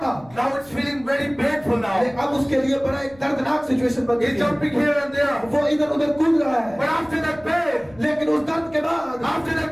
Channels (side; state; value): left; noise; rumble, 25 dB below the sound